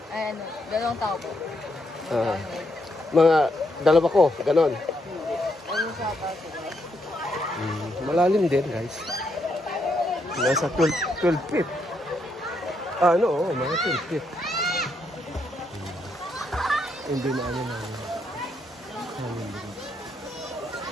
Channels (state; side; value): normal; both; correlation 0.78